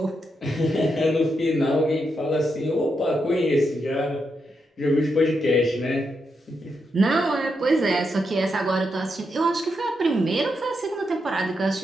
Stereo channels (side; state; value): both; normal; correlation 0.83